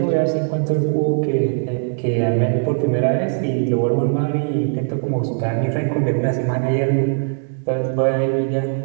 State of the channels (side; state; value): left; silent; digital silence